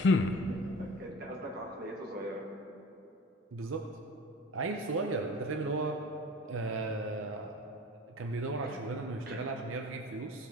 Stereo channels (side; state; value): both; normal; correlation 0.39